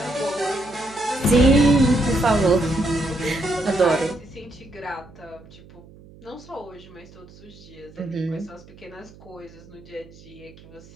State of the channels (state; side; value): noise; right; hum, 22 dB below the sound